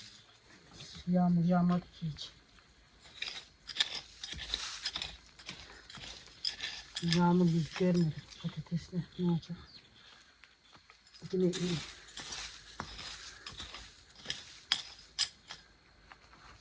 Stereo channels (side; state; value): both; identical; correlation 1.00